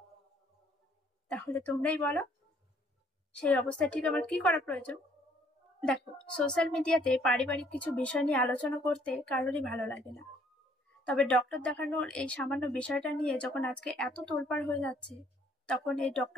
তাহলে তোমরাই বলো সেই অবস্থায় ঠিক আমার কি করা প্রয়োজন? দেখো, সোশ্যাল মিডিয়াতে পারিবারিক কিছু বিষয় নিয়ে আলোচনা করতে কারোরই ভালো লাগে না, তবে ডক্টর দেখানোর এই সামান্য বিষয়টা নিয়ে যখন আজকে এত তোলপাড় হয়ে যাচ্ছে, তখন এই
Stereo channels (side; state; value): both; normal; correlation 0.63